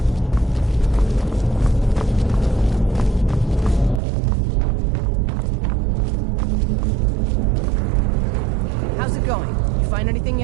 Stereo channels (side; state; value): left; drops out; at 4.0 s